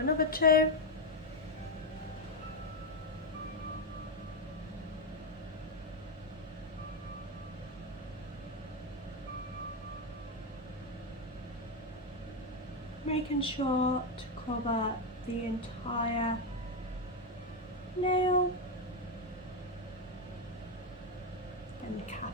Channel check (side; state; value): both; normal; correlation 0.07